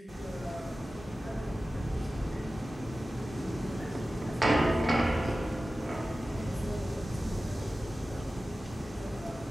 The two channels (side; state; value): both; normal; correlation 0.95